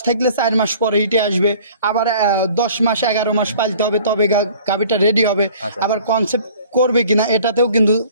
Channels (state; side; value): inverted; both; correlation -0.50